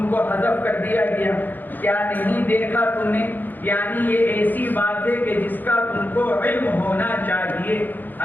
کو حذف کر دیا گیا، کیا نہیں دیکھا تم نے، یعنی یہ ایسی بات ہے کہ جس کا تم کو علم ہونا چاہیے.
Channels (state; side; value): late; right; 0.088 ms